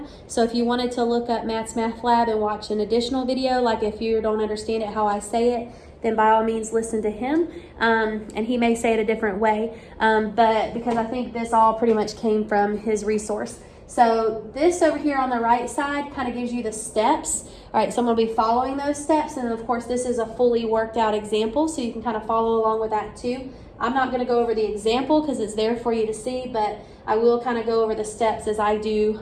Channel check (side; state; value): both; identical; correlation 1.00